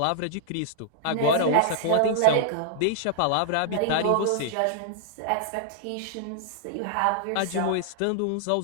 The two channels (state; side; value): different; both; correlation -0.01